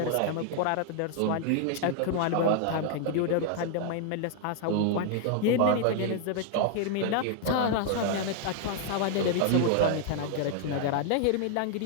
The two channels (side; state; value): both; different; correlation 0.00